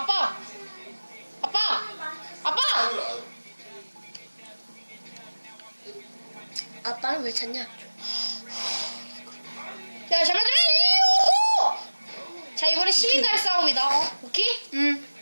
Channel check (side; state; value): both; inverted; correlation -1.00